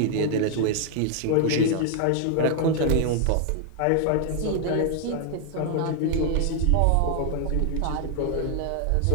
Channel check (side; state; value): both; different; correlation 0.00